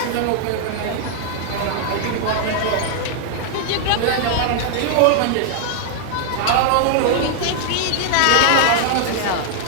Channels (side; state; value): both; different; correlation -0.01